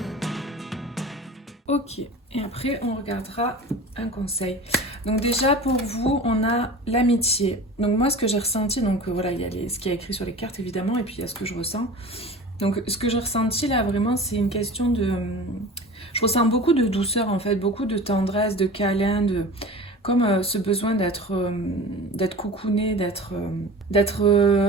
Ok, et après on regardera un conseil. Donc déjà pour vous, on a l'amitié. Donc moi ce que j'ai ressenti, donc voilà, il y a ce qui est écrit sur les cartes évidemment, et puis il y a ce que je ressens. Donc ce que j'ai ressenti là vraiment c'est une question de... Je ressens beaucoup de douceur en fait, beaucoup de tendresse, de câlin, comme ce besoin d'être coucouné, d'être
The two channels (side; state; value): both; normal; correlation 0.36